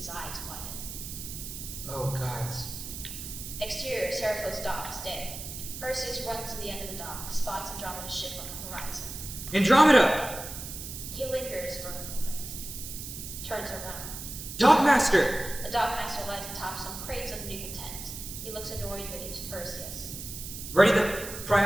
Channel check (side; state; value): right; noise; hiss, 9 dB below the sound